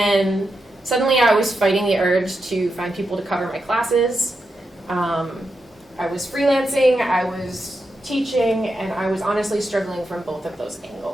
suddenly I was fighting the urge to find people to cover my classes. I was freelancing, I was teaching, and I was honestly struggling from both of those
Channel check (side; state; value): both; normal; correlation 0.86